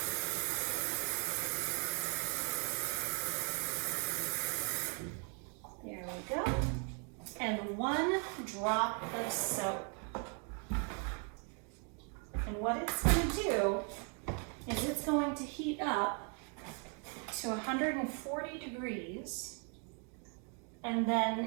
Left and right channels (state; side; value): quieter; left; 39.1 dB